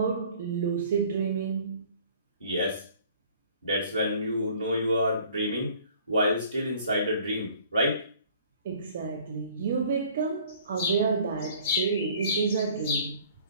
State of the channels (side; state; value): both; inverted; correlation -0.53